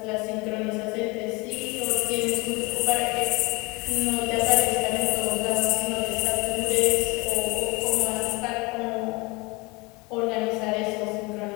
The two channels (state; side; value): quieter; right; 26.0 dB